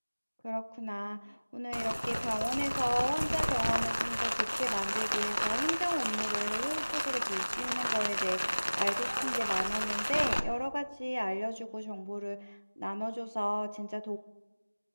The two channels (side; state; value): both; inverted; correlation -1.00